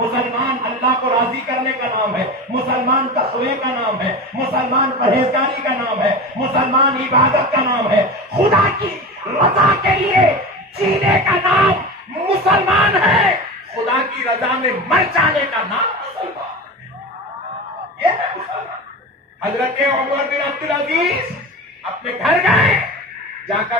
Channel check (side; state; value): both; normal; correlation 0.28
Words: اللہ کو راضی کرنے کا نام ہے، مسلمان تقوی کا نام ہے، مسلمان پرہیزگاری کا نام ہے، مسلمان عبادت کا نام ہے، خدا کی رضا کے لیے جینے کا نام مسلمان ہے، خدا کی رضا میں مر جانے کا نام مسلمان ہے۔ یہ ہے مسلمان۔ حضرت عمر بن عبدالعزیز اپنے گھر گئے، جا